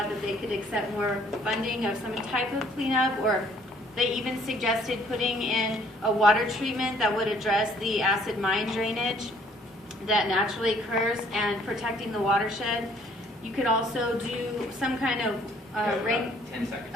that they could accept more funding of some type of cleanup, or they even suggested putting in a water treatment that would address the acid mine drainage that naturally occurs and protecting the watershed. You could also do some kind of 10 seconds.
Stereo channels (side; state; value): both; normal; correlation 0.61